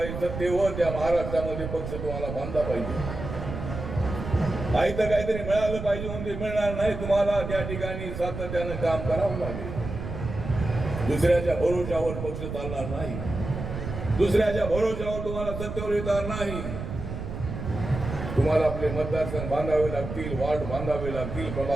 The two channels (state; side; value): noise; right; rumble, 7 dB below the sound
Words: सत्तेवर, त्या महाराष्ट्रामध्ये पक्ष तुम्हाला बांधला पाहिजे. तर काहीतरी मिळालं पाहिजे म्हणून ते मिळणार नाही. तुम्हाला त्या ठिकाणी सातत्यानं काम करावं लागेल. दुसऱ्याच्या भरोशावर पक्ष चालणार नाही. दुसऱ्याच्या भरोशावर तुम्हाला सत्तेवर येणार नाही. तुम्हाला आपले मतदारसंघ बांधावे लागतील, वार्ड बांधावे लागतील,